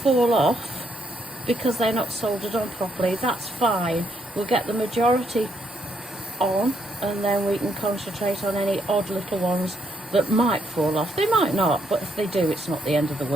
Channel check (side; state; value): both; normal; correlation 0.75